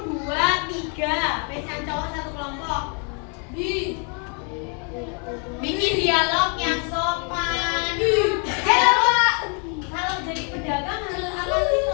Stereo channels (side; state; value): right; quieter; 38.5 dB